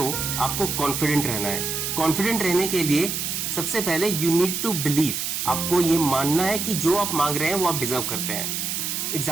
आपको कॉन्फिडेंट रहना है। कॉन्फिडेंट रहने के लिए सबसे पहले यू नीड टू बिलीव, आपको ये मानना है कि जो आप मांग रहे हैं वो आप डिजर्व करते हैं।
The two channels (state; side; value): noise; right; hiss, 2 dB below the sound